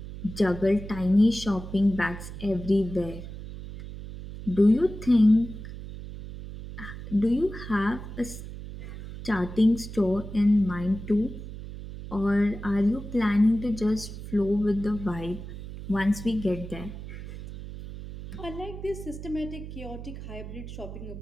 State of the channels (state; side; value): noise; right; hum, 11 dB below the sound